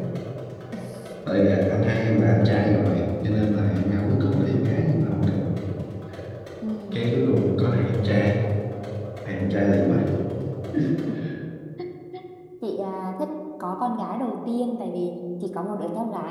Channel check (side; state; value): both; identical; correlation 1.00